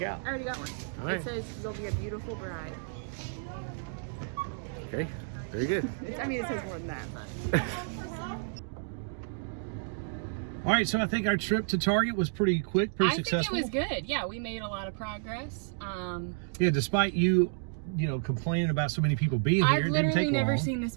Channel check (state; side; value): silent; left; digital silence